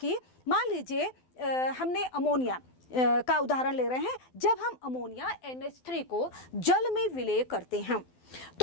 मान लीजिए हमने अमोनिया का उदाहरण ले रहे हैं। जब हम अमोनिया NH3 को जल में विलय करते हैं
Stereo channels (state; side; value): late; right; 12 ms